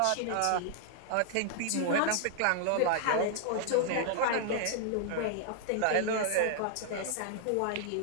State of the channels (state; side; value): different; both; correlation -0.01